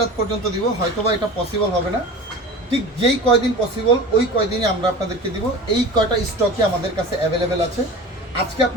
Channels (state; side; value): normal; both; correlation 0.35